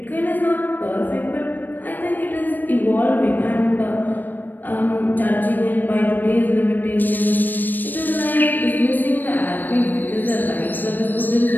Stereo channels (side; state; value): right; late; 0.090 ms